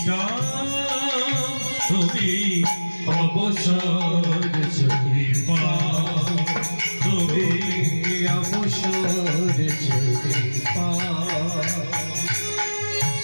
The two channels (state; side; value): inverted; both; correlation -1.00